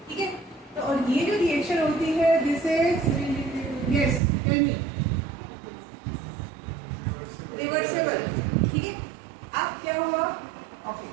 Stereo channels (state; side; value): drops out; left; at 4.2 s